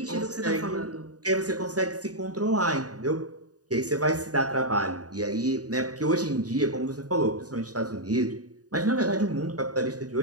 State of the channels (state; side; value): late; left; 0.68 ms